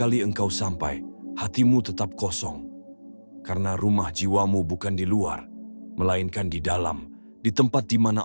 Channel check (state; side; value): inverted; both; correlation -1.00